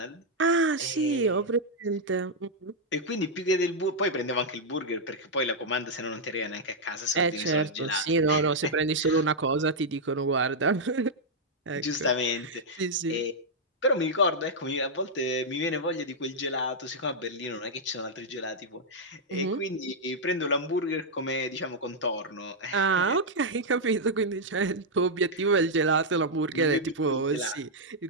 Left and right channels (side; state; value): both; normal; correlation -0.04